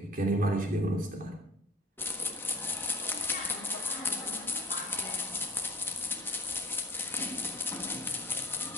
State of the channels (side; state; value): both; normal; correlation 0.46